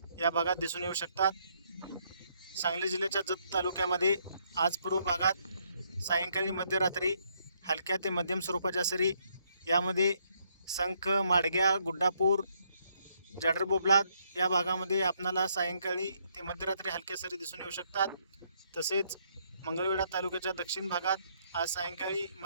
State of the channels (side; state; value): both; inverted; correlation -0.72